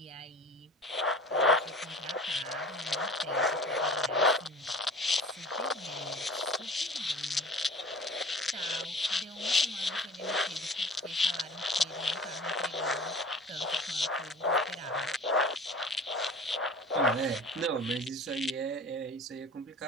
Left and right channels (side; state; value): both; normal; correlation 0.42